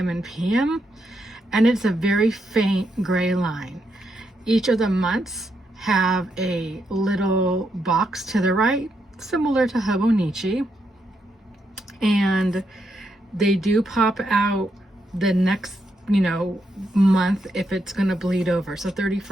and PM. And it's a very faint gray line. Each of the months have a little box to the right, similar to Hobonichi. And they do pop out the next, month if it's going to bleed over. So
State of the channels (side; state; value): both; normal; correlation 0.80